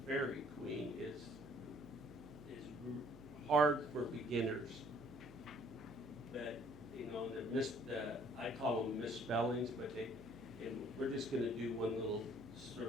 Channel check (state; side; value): noise; right; hum, 20 dB below the sound